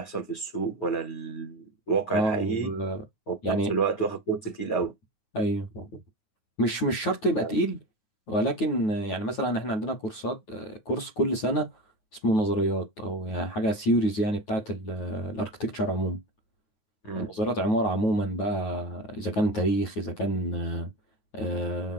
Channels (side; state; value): right; late; 9.2 ms